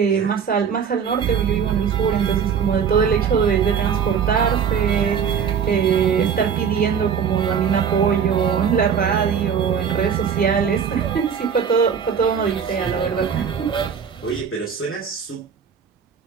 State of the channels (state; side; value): quieter; left; 7.2 dB